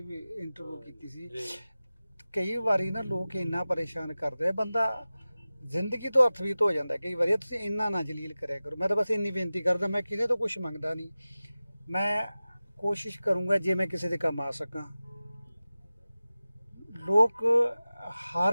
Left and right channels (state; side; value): inverted; both; correlation -0.97